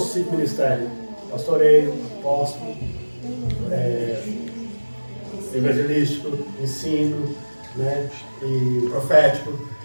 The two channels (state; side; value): inverted; both; correlation -1.00